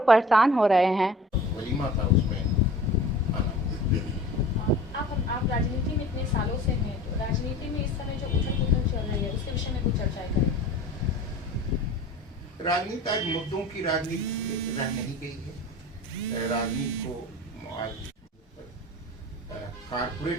परेशान हो रहे हैं। वलीमा था उसमें आप राजनीति में इतने सालों से हैं, तो राजनीति में इस समय जो उथल-पुथल चल रही है उसके विषय में कुछ चर्चाएं करें। राजनीति आज मुद्दों की राजनीति रह नहीं गई है। राजनीति को आज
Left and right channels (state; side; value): normal; both; correlation 0.41